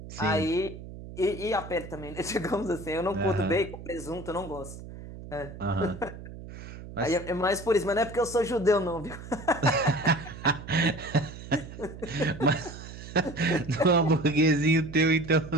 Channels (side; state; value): right; noise; hum, 13 dB below the sound